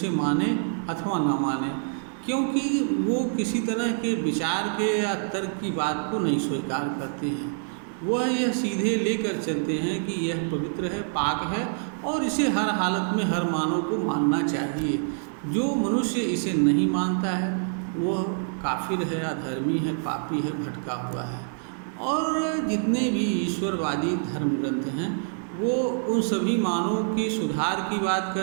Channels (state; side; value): silent; left; digital silence